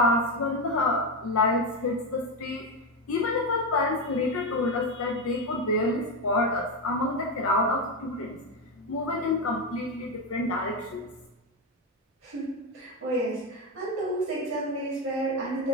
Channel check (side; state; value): both; normal; correlation 0.12